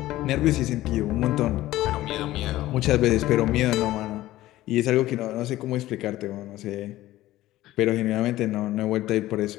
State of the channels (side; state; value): right; quieter; 15.8 dB